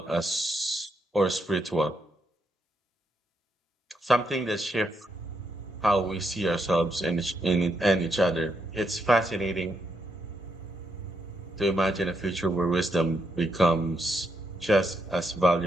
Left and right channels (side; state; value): both; normal; correlation 0.79